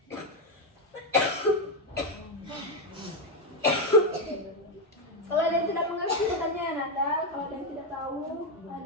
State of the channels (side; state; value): both; normal; correlation 0.05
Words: Kalau ada yang tidak mengerti bertanya ya Nanda. Kalau ada yang tidak tahu, ada